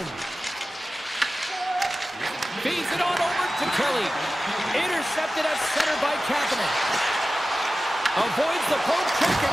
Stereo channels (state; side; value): normal; both; correlation 0.95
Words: Feeds it on over to Kelly. Intercepted at center by Kapanen. Avoids the poke check